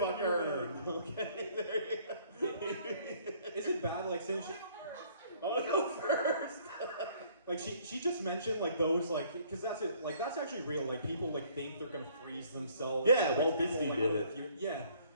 the her. new Okay, there you go. Is it bad, like, since she, I want to go first. like she just mentioned like those like because that's it like that's actually real like people like think they're gonna freeze themselves. Yeah, like, Walt people, Disney like, did oh, it. if you- yeah.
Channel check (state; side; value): inverted; both; correlation -0.60